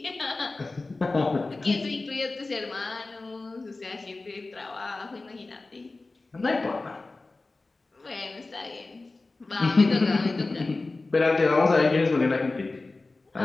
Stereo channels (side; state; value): right; quieter; 3.4 dB